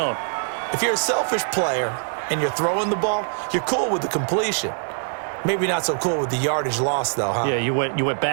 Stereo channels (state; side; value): silent; left; digital silence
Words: If you're a selfish player and you're throwing the ball, you're cool with the completion. Maybe not so cool with the yardage loss, though, huh? Yeah, you went